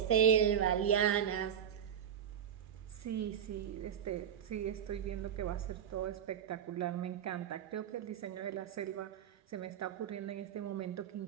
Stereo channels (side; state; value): left; quieter; 8.8 dB